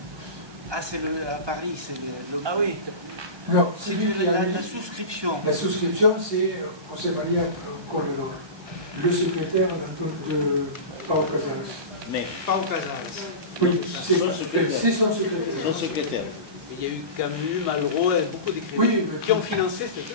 Ah, c'est à Paris, c'est le... Ah oui, Non, C'est celui qui a mis- la souscription. La souscription, c'est José María Corredor, le secrétaire de Pau Casals. Mais Pas au Casals. Oui, c'est Son secrétaire. c'est son secrétaire. son secrétaire. il y a eu Camus, Malraux, et beaucoup d'écrivains Oui, mais- qui ont financé cette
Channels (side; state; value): left; late; 1.2 ms